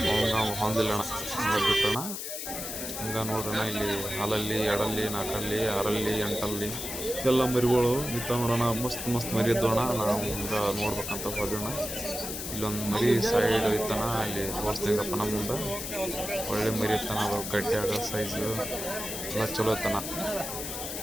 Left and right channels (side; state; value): left; noise; hiss, 6 dB below the sound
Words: ಹೊಂದಿಲ್ಲಣ್ಣ ಬಿಟ್ಟಣ. ಹಂಗ ನೋಡ್ರಣ, ಇಲ್ಲಿ ಹಾಲಲ್ಲಿ, ಎಡಲ್ಲಿ, ನಾಲ್ಕಲ್ಲಿ, ಆರಲ್ಲಿ, ಎಂಟಲ್ಲಿ ಎಲ್ಲ ಮರಿಗಳು ನಿಂತ ನೋಡೋಣ. ಮಸ್ತ್ ಮಸ್ತ್ ಮರಿ ಇದ್ದೋಣ. ನಾವು ಹಿಂಗೆ ನೋಡ್ಬೇಕಂತ ಹೋದೋಣ. ಇಲ್ಲೊಂದು ಮರಿ ಸೈಡ್ ಇತ್ತಾನ, ಅಲ್ಲಿ ತೋರಿಸ್ದಂಗಪ್ಪ ನಮ್ಮ ಮುಂದೆ. ಒಳ್ಳೆ ಮರಿ ಇತ್ತಾನ, ಅದು ಗಟ್ಟಿಯಾಗ ಸೈಜು ಎಲ್ಲ ಚಲೋ ಇತ್ತಾನ